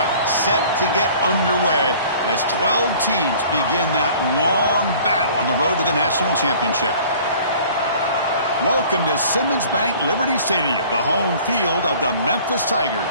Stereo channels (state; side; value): inverted; both; correlation -0.49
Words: set to get underway as 12 teams begin that long battle on the road to the national championship. Welcome to Simmons Bank Liberty Stadium, the home field of the Memphis